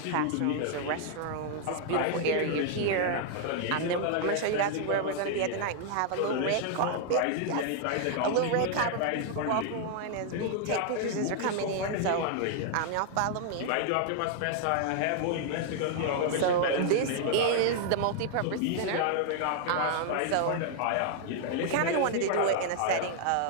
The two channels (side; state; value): both; different; correlation 0.00